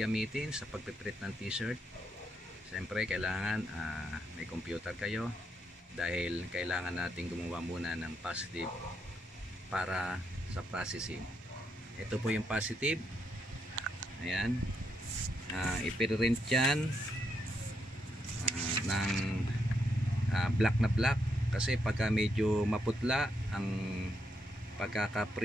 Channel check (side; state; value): both; normal; correlation 0.79